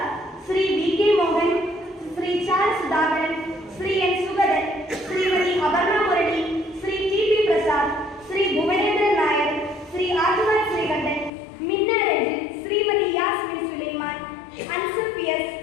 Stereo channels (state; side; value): drops out; right; at 11.3 s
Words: Shri V K Mohan, Shri Chala Sudhakaran, Shri N Sugathan, Shrimati Aparna Murali, Shri T P Prasad, Shri Bhuvanendran Nair, Shri Adivan Sreekantan, Minna Ranjin, Shrimati Yasmin Sulaiman, Ansar P S,